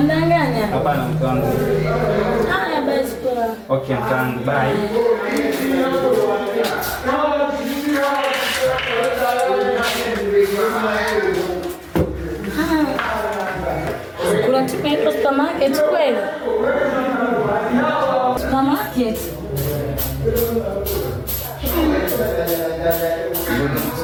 Hapana mke wangu. Haya basi kwa. Okay mke wangu, bye. Kuna timu inaitwa supermarket kweli? Supermarket.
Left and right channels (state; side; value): identical; both; correlation 1.00